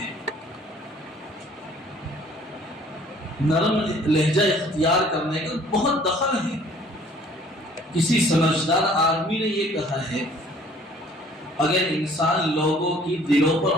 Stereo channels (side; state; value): both; normal; correlation 0.56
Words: نرم لہجہ اختیار کرنے کا بہت دخل ہے۔ کسی سمجھدار آدمی نے یہ کہا ہے اگر انسان لوگوں کی دلوں پر